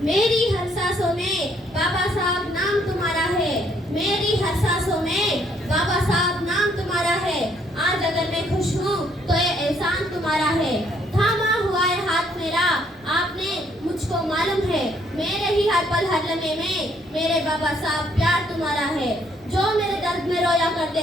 मेरी हर सांसों में बाबा साहब नाम तुम्हारा है, मेरी हर सांसों में बाबा साहब नाम तुम्हारा है। आज अगर मैं खुश हूँ तो ये एहसान तुम्हारा है। थामा हुआ है हाथ मेरा आपने मुझको मालूम है, मेरे ही हर पल हर लम्हे में मेरे बाबा साहब प्यार तुम्हारा है। जो मेरे दर्द में रोया करते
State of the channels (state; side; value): normal; both; correlation 0.68